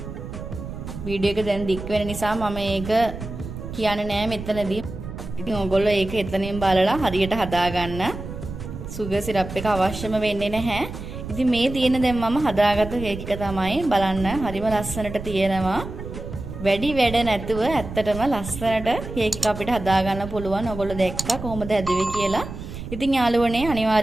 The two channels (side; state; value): right; noise; rumble, 9 dB below the sound